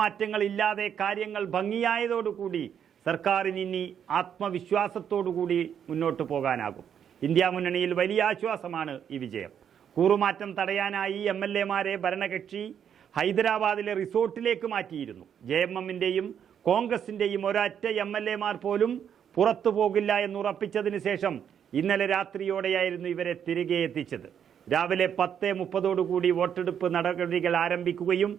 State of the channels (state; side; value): quieter; left; 8.5 dB